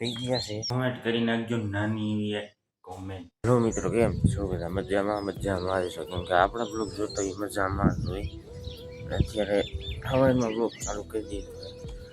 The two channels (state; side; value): identical; both; correlation 1.00